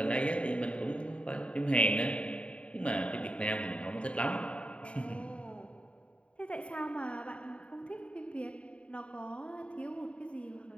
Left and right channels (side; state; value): right; late; 0.060 ms